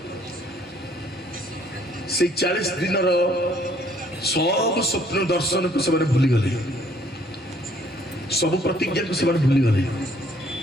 ସେଇ 40 ଦିନର ସବୁ ସ୍ୱପ୍ନ ଦର୍ଶନକୁ ସେମାନେ ଭୁଲିଗଲେ, ସବୁ ପ୍ରତିଜ୍ଞାକୁ ସେମାନେ ଭୁଲିଗଲେ।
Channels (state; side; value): normal; both; correlation 0.62